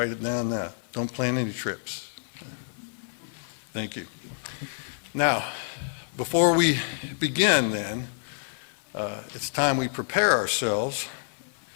it down now. Don't plan any trips. Thank you. Now, before we begin then, it's time we prepare ourselves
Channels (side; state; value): right; silent; digital silence